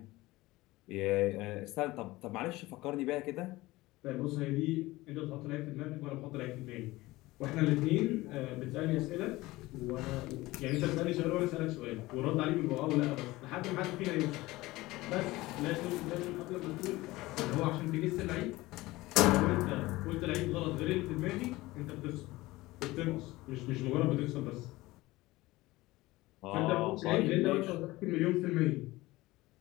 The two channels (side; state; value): right; quieter; 19.4 dB